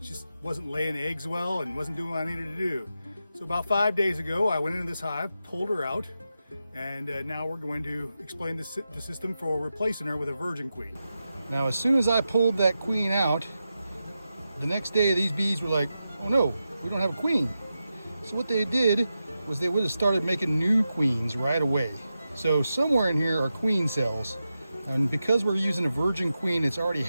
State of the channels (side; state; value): both; inverted; correlation -0.90